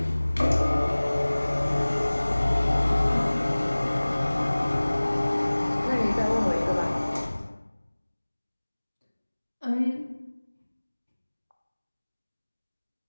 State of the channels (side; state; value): both; inverted; correlation -1.00